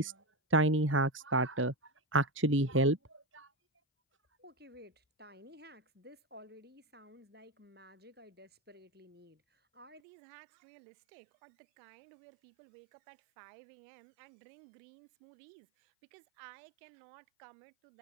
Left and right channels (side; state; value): left; drops out; at 10.0 s